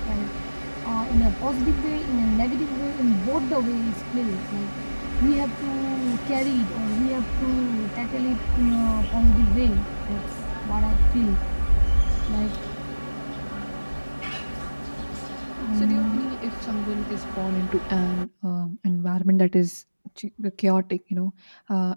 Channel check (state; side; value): inverted; both; correlation -1.00